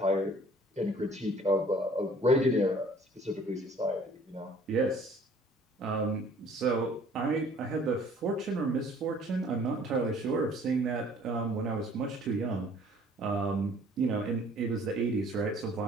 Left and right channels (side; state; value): both; normal; correlation 0.54